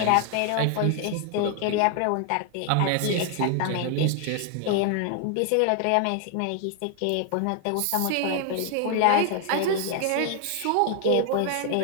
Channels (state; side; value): different; both; correlation 0.00